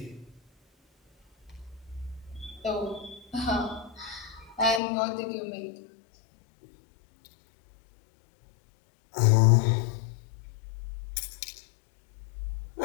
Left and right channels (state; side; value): drops out; right; at 4.8 s